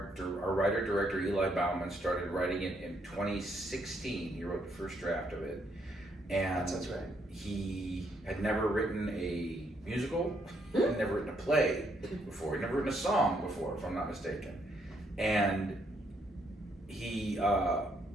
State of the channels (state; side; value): normal; both; correlation 0.73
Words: writer-director Eli Bauman started writing it in 2016. He wrote the first draft of it. And That's right. he had never written a musical, had never written a play before, he'd never written a song before, if I'm not mistaken. And he